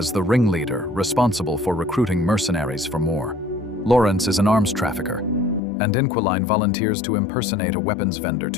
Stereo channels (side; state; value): right; drops out; at 5.6 s